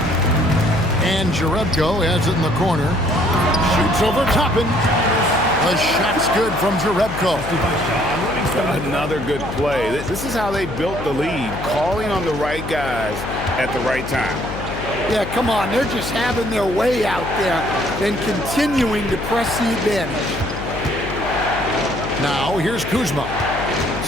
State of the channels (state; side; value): noise; left; hum, 8 dB below the sound